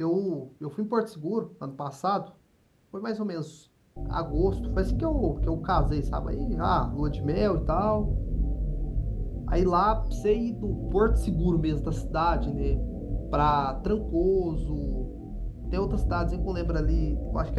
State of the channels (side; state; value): both; identical; correlation 1.00